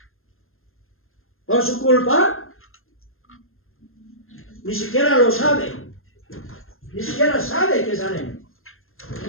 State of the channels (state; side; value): late; right; 0.60 ms